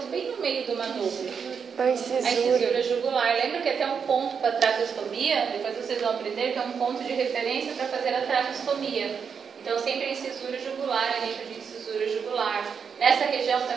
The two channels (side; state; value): left; quieter; 6.5 dB